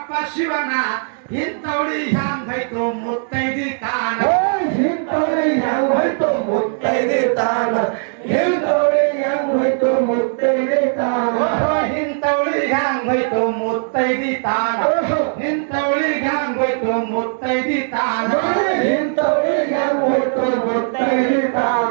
ಶಿವನ ಇಂಥವಳಿ ಹ್ಯಾಂಗೈತು ಮುತ್ತೈದಿ ತಾನ ಹಿಂತೋಳಿ ಹೆಂಗ್ ಹೋಯ್ತು ಮುತ್ತೈದಿ ತಾನ ಹಿಂತೋಳಿ ಹೆಂಗ್ ಹೋಯ್ತು ಮುತ್ತೈದೆ ತಾನ ಇಂಥವಳಿಗೆ ಹ್ಯಾಂಗ್ ಹೋಯ್ತು ಮುತ್ತೈದಿ ತಾನ ಇಂಥವಳಿಗೆ ಹ್ಯಾಂಗ್ ಹೋಯ್ತು ಮುತ್ತೈದಿ ತಾನ ಇಂಥವಳಿಗೆ ಹೋಯ್ತು ಮುತ್ತೈದೆ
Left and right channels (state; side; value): silent; left; digital silence